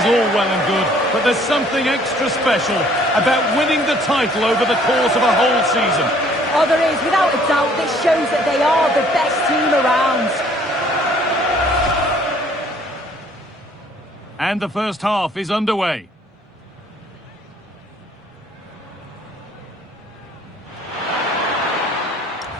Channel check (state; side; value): normal; both; correlation 0.59